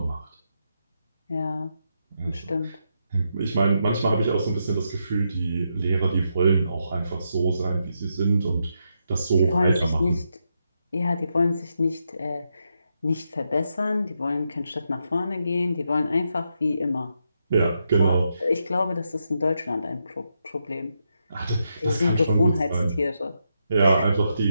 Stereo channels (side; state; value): both; inverted; correlation -0.83